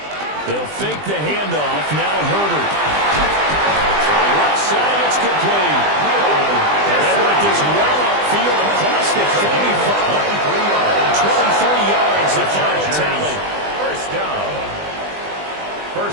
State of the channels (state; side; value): late; left; 20 ms